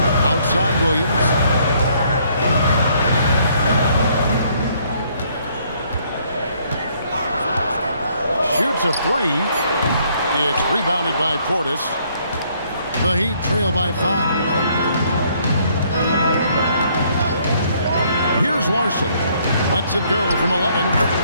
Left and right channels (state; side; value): inverted; both; correlation -0.66